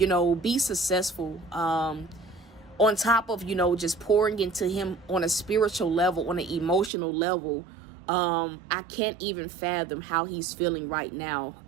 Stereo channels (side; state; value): left; drops out; at 6.9 s